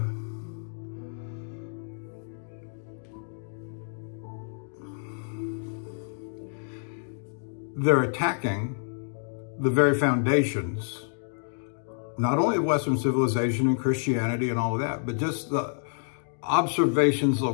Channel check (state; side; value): silent; right; digital silence